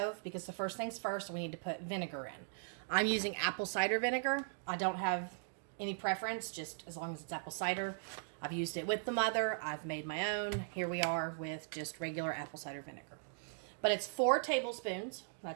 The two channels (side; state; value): left; silent; digital silence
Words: because the first things first, we need to put vinegar in. I'm using apple cider vinegar. I don't have any preference, just as long as it's apple cider. I've used it with the mother. I've made my own. Here we are with just regular apple cider vinegar. But it's 4 tablespoons.